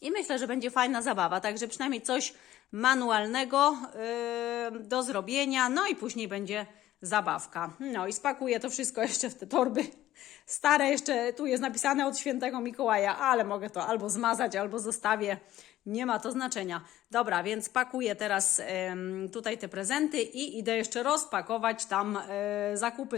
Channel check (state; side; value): quieter; right; 13.9 dB